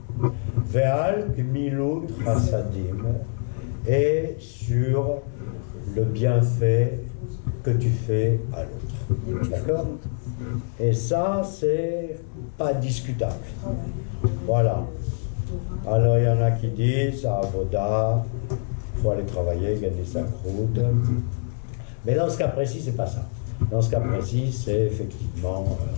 Ve'al Gmilut Chassadim, et sur le bienfait que tu fais à l'autre. D'accord? Et ça, c'est pas discutable. Voilà. Alors, il y en a qui disent, à Avoda, il faut aller travailler, gagner sa croûte. Mais dans ce cas précis, c'est pas ça. Dans ce cas précis, c'est effectivement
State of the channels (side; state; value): right; silent; 62 dB below the other